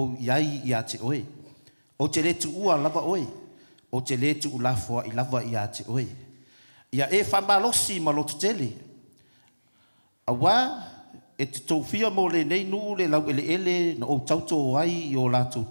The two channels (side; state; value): both; inverted; correlation -1.00